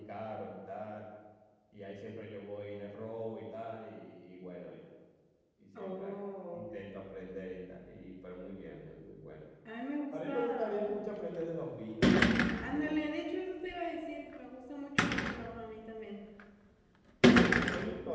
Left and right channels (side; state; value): both; identical; correlation 1.00